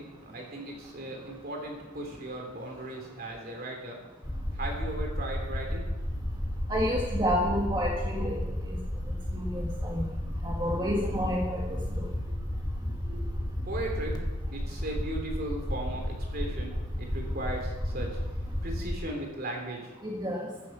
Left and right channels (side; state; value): both; normal; correlation 0.71